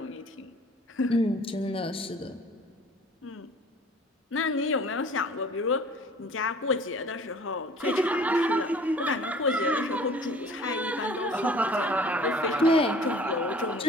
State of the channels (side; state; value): both; normal; correlation 0.49